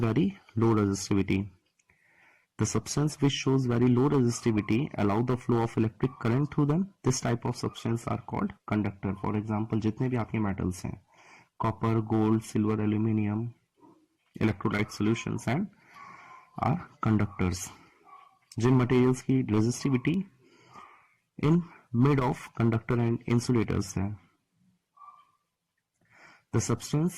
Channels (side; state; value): both; identical; correlation 1.00